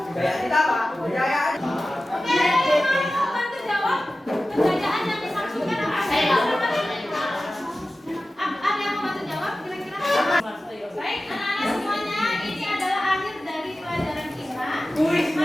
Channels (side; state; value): both; normal; correlation 0.95